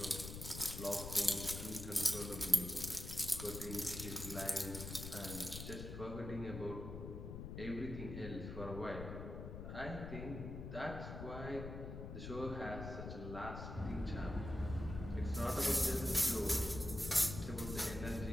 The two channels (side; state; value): left; noise; rumble, 7 dB below the sound